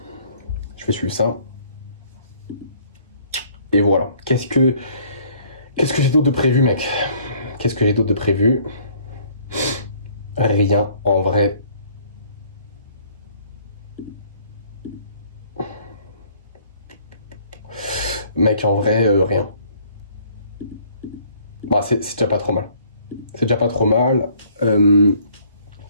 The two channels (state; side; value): inverted; both; correlation -0.59